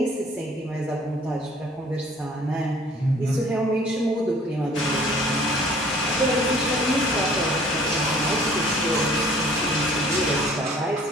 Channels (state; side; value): normal; both; correlation 0.54